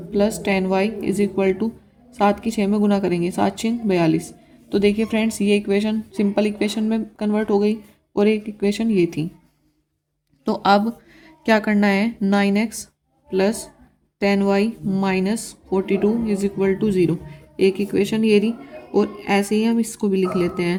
plus 10y is equal to 7 की 6 में गुना करेंगे, 7 6 42। तो देखिए फ्रेंड्स, ये इक्वेशन सिंपल इक्वेशन में कन्वर्ट हो गई, और एक इक्वेशन ये थी। तो अब क्या करना है, 9x plus 10y minus 42 is equal to 0। एक इक्वेशन ये रही, और ऐसे ही हम इसको भी लिख लेते हैं,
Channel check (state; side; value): identical; both; correlation 1.00